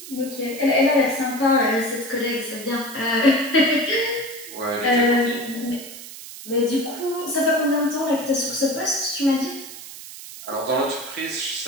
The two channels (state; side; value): noise; right; hiss, 13 dB below the sound